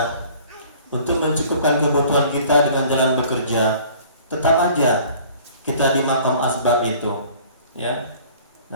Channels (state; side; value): inverted; both; correlation -0.51